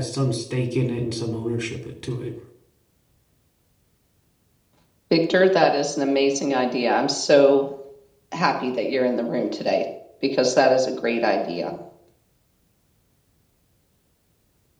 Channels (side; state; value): both; identical; correlation 1.00